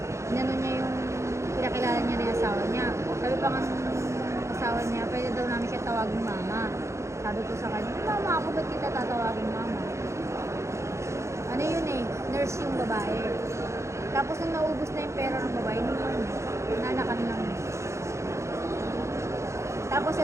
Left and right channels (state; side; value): late; left; 0.14 ms